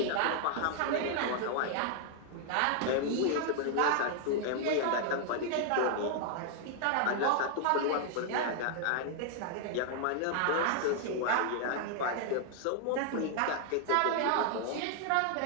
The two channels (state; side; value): different; both; correlation 0.00